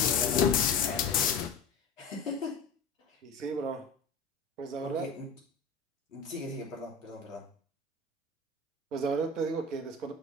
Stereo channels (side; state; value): right; quieter; 4.1 dB